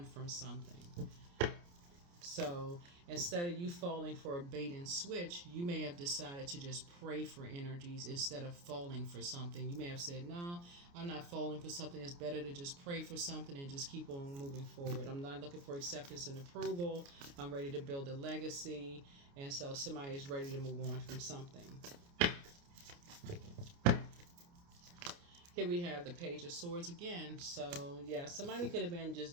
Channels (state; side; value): late; left; 29 ms